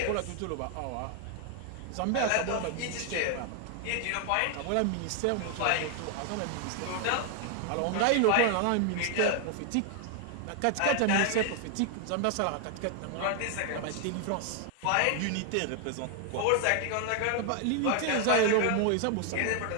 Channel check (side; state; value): both; different; correlation 0.00